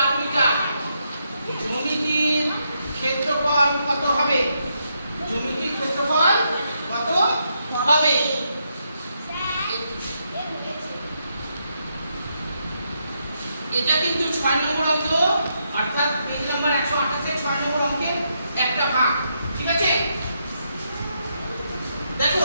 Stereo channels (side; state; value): both; inverted; correlation -0.79